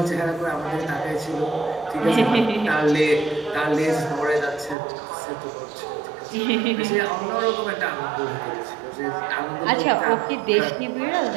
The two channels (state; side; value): drops out; left; at 4.8 s